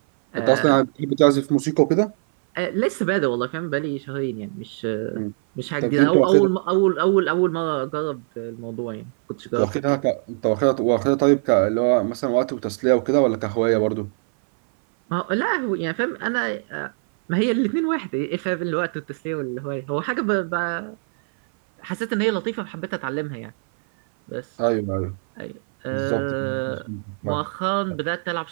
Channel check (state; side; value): silent; left; 58 dB below the other